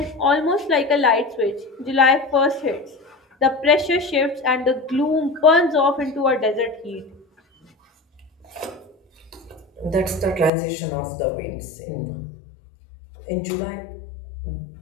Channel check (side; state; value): right; drops out; at 10.5 s